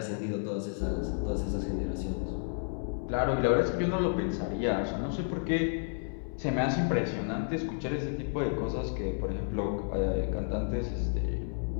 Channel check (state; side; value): silent; right; 57 dB below the other